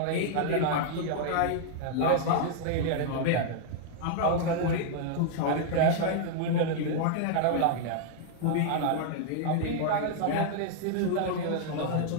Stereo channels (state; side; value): different; both; correlation -0.01